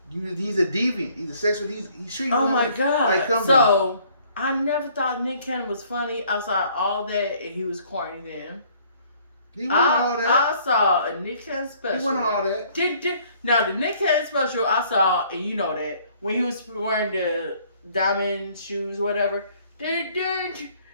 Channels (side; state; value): both; inverted; correlation -0.60